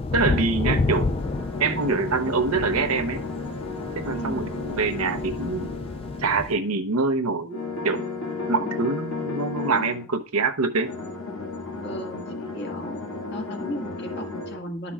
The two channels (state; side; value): normal; both; correlation 0.17